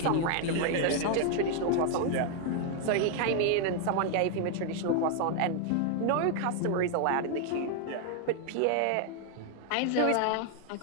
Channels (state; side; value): different; both; correlation 0.00